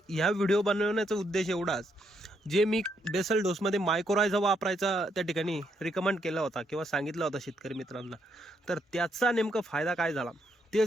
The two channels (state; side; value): normal; both; correlation 0.76